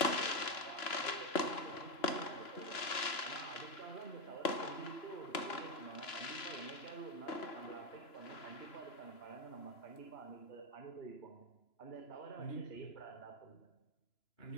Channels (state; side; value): late; right; 3.0 ms